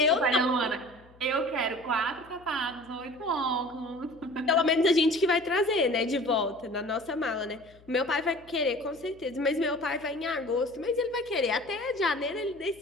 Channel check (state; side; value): noise; left; hum, 26 dB below the sound